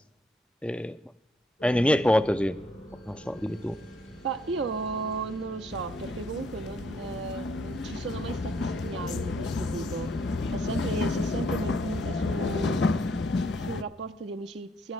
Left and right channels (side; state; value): both; normal; correlation 0.70